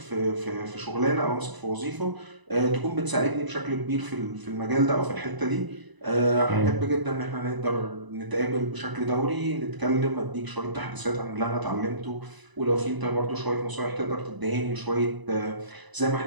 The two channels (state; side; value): late; left; 1.0 ms